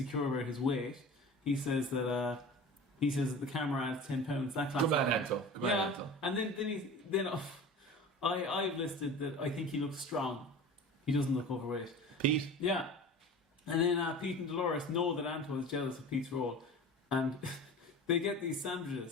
about his weight. He says that the camera adds £10. That class. Good man, Anto. And then I've listed that I think he looks strong. He doesn't look overweight. Pete. Yeah. And then Pete and Dolores know that Anto is jealous of Pete's role, and they get these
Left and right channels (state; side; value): normal; both; correlation 0.37